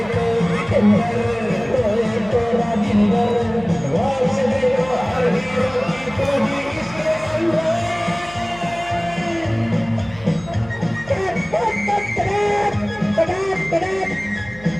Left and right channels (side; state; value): left; noise; hum, 19 dB below the sound